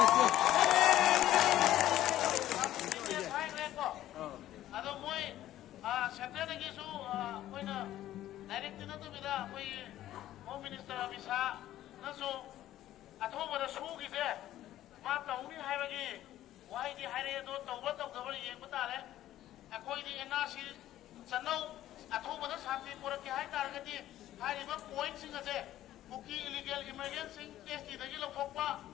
Yes, hai reko. Ado moi setia lagi su moi na direct na tu bida moi home minister bisa na su atho bara su gi se ma tahu ni hai bagi wai di hai re do tahu ba tahu gabar yeng bata le akoi di NRC sanau atho bara santi pura ki hai tar ga di hai ri ba point sing ase Buki illegal immigrants sing case di lagi lokok pa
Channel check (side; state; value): right; quieter; 13.4 dB